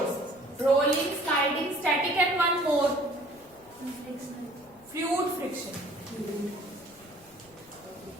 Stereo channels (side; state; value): left; noise; rumble, 28 dB below the sound